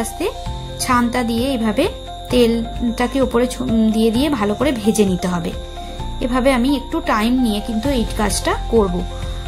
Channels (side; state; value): both; identical; correlation 1.00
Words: আস্তে ছানটা দিয়ে এইভাবে তেলটাকে উপরে দিয়ে দিয়ে ভালো করে ভেজে নিতে হবে। এভাবে আমি একটু টাইম নিয়ে কিন্তু এই কাজটা করব,